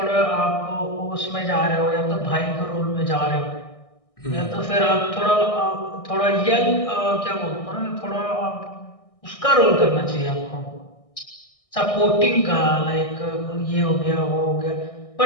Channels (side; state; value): right; late; 1.6 ms